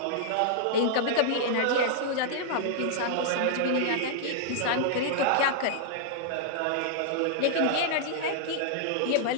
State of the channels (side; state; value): both; different; correlation -0.01